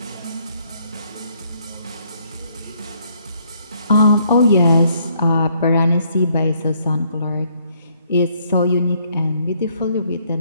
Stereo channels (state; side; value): inverted; both; correlation -0.68